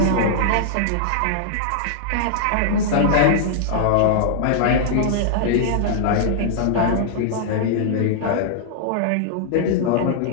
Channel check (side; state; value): both; different; correlation -0.01